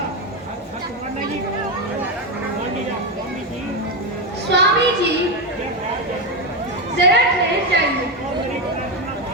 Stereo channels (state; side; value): normal; both; correlation 0.10